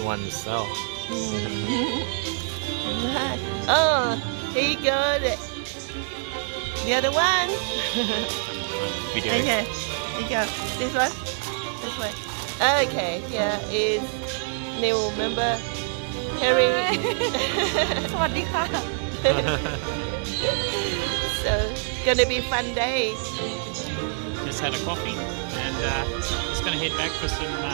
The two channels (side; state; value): left; silent; digital silence